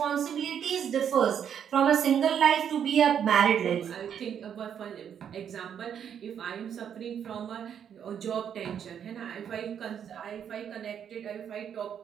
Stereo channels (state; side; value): quieter; left; 8.5 dB